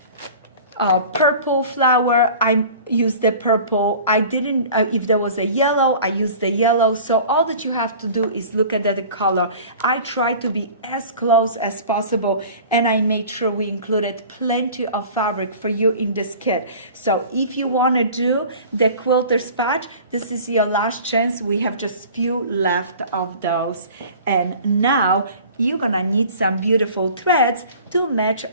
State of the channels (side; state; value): both; inverted; correlation -0.43